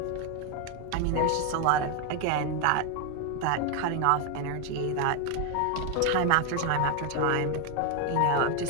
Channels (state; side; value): different; both; correlation 0.01